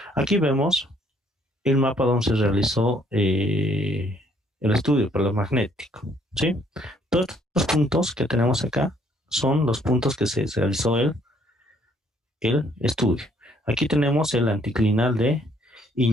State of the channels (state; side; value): normal; both; correlation 0.65